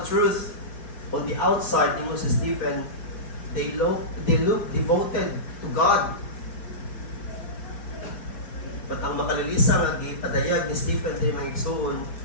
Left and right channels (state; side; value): late; right; 4.7 ms